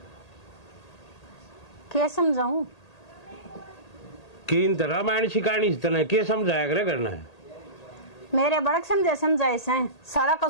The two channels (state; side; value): late; right; 1.8 ms